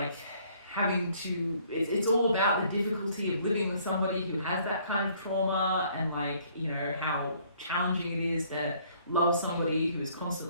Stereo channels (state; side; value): inverted; both; correlation -0.61